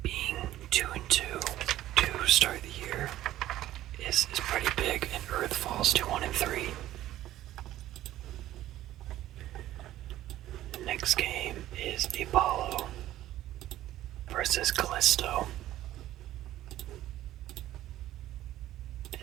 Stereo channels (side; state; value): left; quieter; 13.9 dB